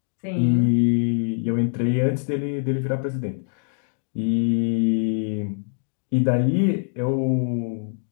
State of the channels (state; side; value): silent; right; 63 dB below the other